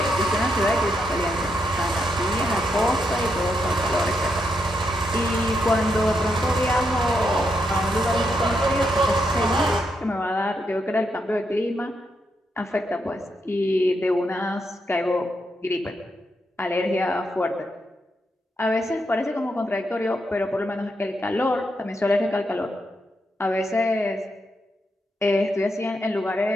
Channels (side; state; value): both; normal; correlation 0.81